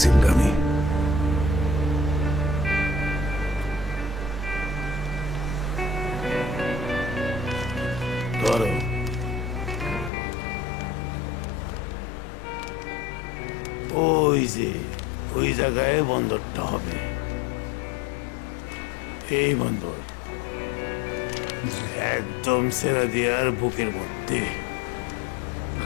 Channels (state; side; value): drops out; right; at 10.1 s